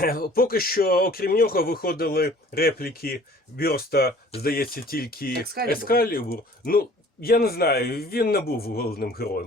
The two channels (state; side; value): normal; both; correlation 0.51